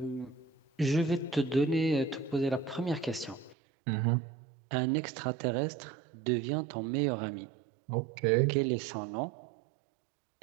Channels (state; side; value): drops out; left; at 3.6 s